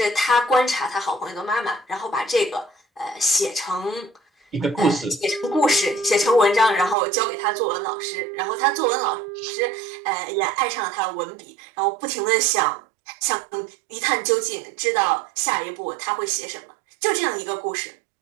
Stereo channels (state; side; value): drops out; left; at 7.0 s